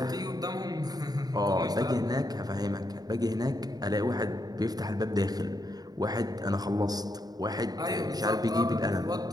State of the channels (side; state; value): left; late; 0.19 ms